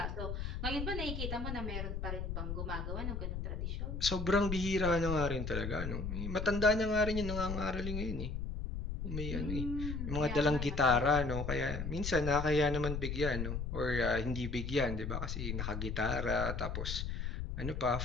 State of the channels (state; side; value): noise; left; rumble, 3 dB below the sound